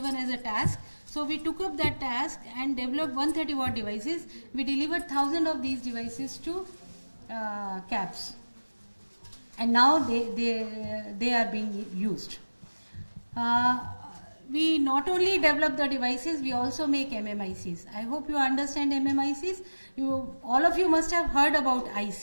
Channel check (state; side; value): inverted; both; correlation -1.00